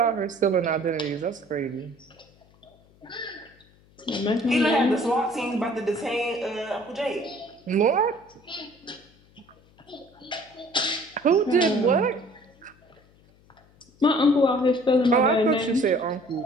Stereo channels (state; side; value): noise; left; hum, 30 dB below the sound